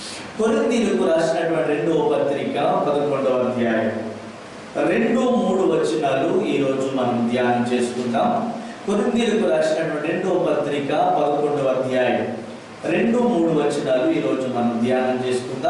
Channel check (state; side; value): identical; both; correlation 1.00